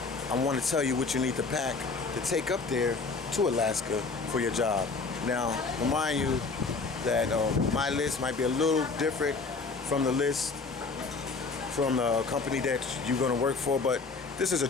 I want to tell you what you need to pack to take up there to Alaska for your job. Now, remind you that my list might be a little different from the list from the company that you're going to work for, but this is a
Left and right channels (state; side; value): quieter; right; 4.2 dB